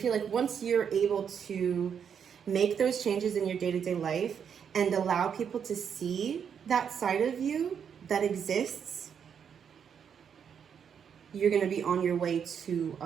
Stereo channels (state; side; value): quieter; left; 7.6 dB